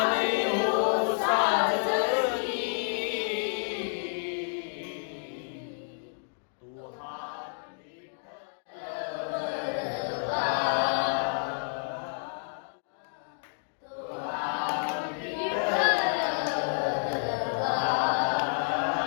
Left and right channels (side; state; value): right; silent; digital silence